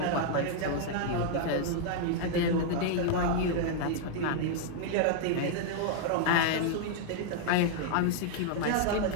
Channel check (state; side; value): different; both; correlation -0.01